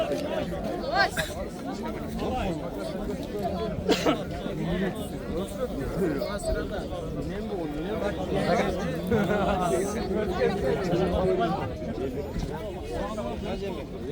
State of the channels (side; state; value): both; identical; correlation 1.00